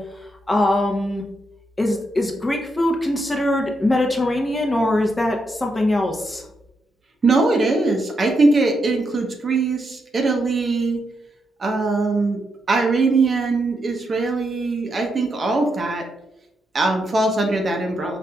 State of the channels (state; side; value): normal; both; correlation 0.82